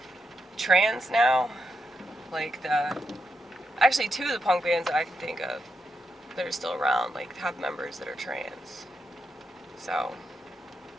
trans now. Like actually two of the punk bands that I can think of that are still around like have members that are trans. So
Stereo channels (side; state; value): both; normal; correlation 0.84